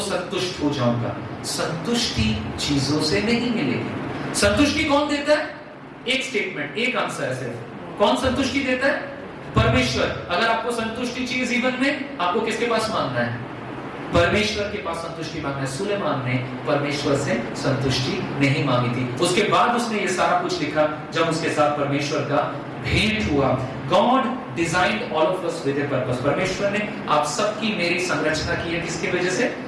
संतुष्ट हो जाऊंगा। संतुष्टि चीजों से नहीं मिलेगी। संतुष्टि कौन देता है? एक स्टेटमेंट, एक आंसर है सिर्फ। कौन संतुष्टि देता है? परमेश्वर। अगर आपको संतुष्टि चाहिए जीवन में, आपको किसके पास मांगना है? परमेश्वर के पास संतुष्टि मांगना है। सुलेमान ने परमेश्वर से संतुष्टि नहीं मांगी थी। उसके बाद उसने ये सारा कुछ लिखा जब उसके साथ परमेश्वर का भेंट हुआ। God designed all of us with a purpose. परमेश्वर ने आप सबकी मेरी संरचना की है किसकी वजह से?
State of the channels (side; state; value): both; identical; correlation 1.00